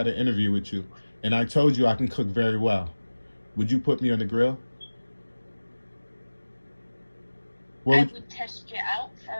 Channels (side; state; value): both; inverted; correlation -1.00